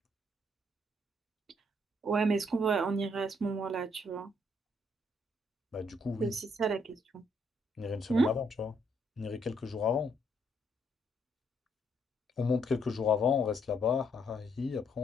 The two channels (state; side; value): normal; both; correlation 0.71